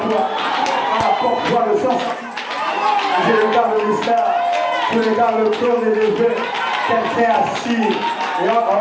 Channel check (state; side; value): identical; both; correlation 1.00